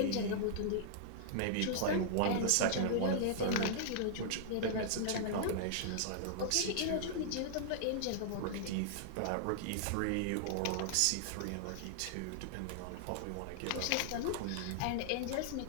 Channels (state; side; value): different; both; correlation -0.01